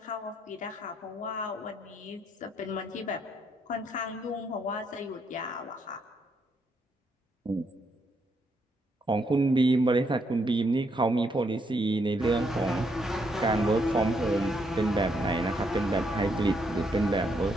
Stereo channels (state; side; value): normal; both; correlation 0.75